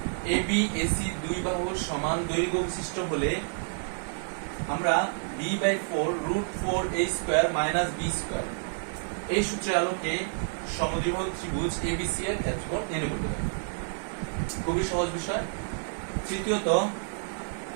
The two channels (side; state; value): left; silent; digital silence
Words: এ বি এসি দুই বাহুর সমান দৈর্ঘ্য বিশিষ্ট হলে আমরা b/4√4a² - b², এই সূত্রের আলোকে সমদ্বিবাহু ত্রিভুজ এবিসি এর ক্ষেত্রফল নির্ণয় করতে পারি। খুবই সহজ বিষয়। তৃতীয়ত,